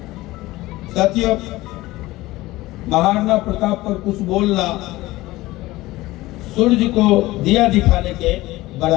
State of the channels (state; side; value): quieter; right; 18.6 dB